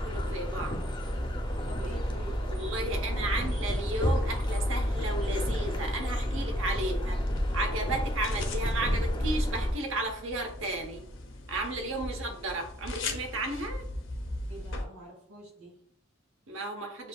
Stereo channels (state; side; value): normal; both; correlation 0.65